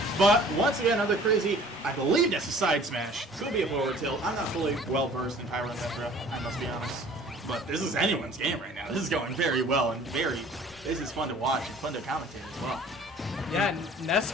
But once again, another crazy, I believe that's a side smash. Could be a forward tilt. I'm not fully well versed in Pyro and Metro, I must be honest. But this is anyone's game right now. This is going very well and this is fun to watch and fun to commentate as well. Yeah, Ness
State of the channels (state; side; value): normal; both; correlation 0.50